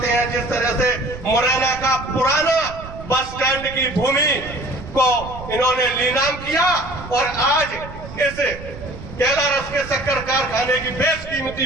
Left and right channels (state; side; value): noise; right; rumble, 13 dB below the sound